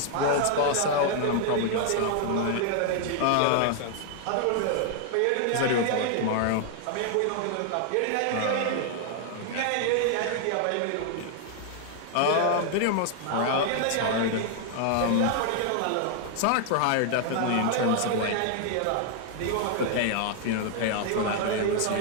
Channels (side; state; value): both; different; correlation 0.00